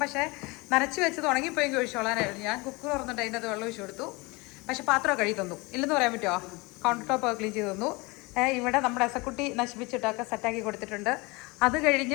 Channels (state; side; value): quieter; right; 25.4 dB